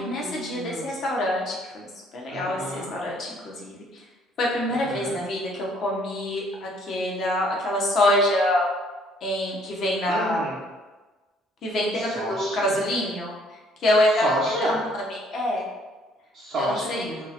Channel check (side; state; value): both; normal; correlation 0.63